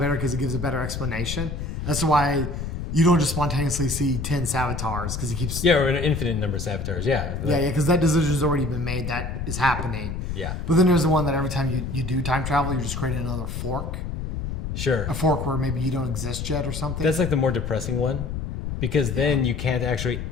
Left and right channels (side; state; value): left; noise; rumble, 4 dB below the sound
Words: because it gives a better explanation. That's why you don't just spontaneously see 10 Savatars because he keeps. Yeah, or an infinite number of Savatars. Yeah. Yeah, because that decision's already been made. That is happening. Yeah. But then there's the one that every time you do time travel, you're just creating another fork. Sure. A fork where maybe you don't exist yet or something. That's like the more depressing one because then you can't actually